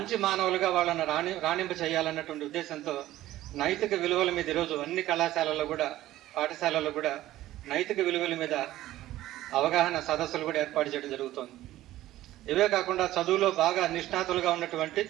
మానవులుగా వాళ్ళని రాణింప చేయాలన్నటువంటి ఉద్దేశంతో నైతిక విలువల మీద ఈరోజు అన్ని కళాశాలల్లో కూడా, పాఠశాలల్లో కూడా నైతిక విలువల మీద అవగాహన సదస్సులు కూడా ఏర్పాటు చేయడం జరుగుతోంది. ఇవే కాకుండా చదువులో బాగా నిష్ణాతులుగా ఉన్నటువంటి,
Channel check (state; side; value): quieter; left; 14.9 dB